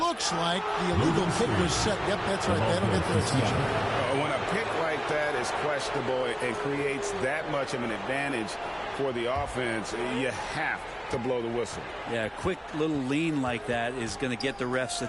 like the illegal pick was set. Yep, that's right. That'll get their attention. When a pick like that is questionable and creates that much of an advantage for the offense, you have to blow the whistle. Yeah, a quick little lean like that is going to get the ref's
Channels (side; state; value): both; identical; correlation 1.00